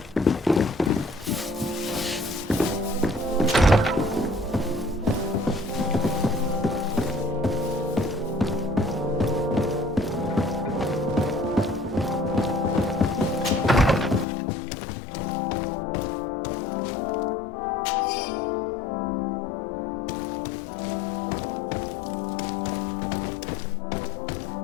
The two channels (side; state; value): right; drops out; at 14.2 s